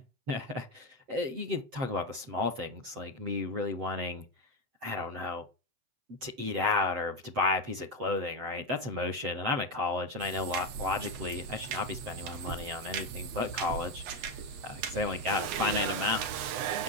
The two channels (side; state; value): left; late; 8.0 ms